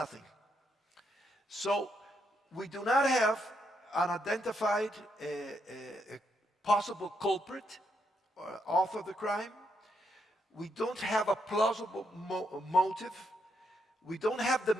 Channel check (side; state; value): both; normal; correlation 0.78